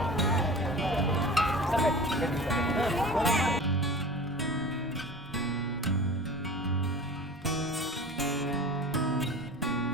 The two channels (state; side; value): normal; both; correlation 0.37